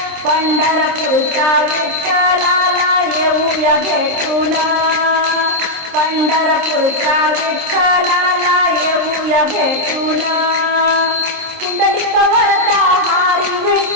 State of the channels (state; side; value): late; left; 26 ms